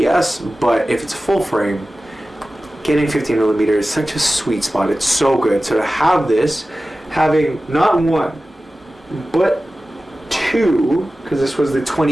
But if it's full frame, getting 15mm is such a sweet spot. It's so good. So to have this, having not one, but two, because this was the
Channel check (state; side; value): normal; both; correlation 0.96